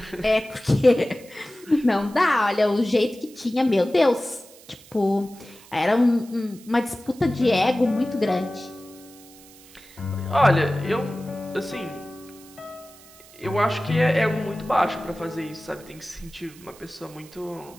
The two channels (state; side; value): noise; right; hiss, 23 dB below the sound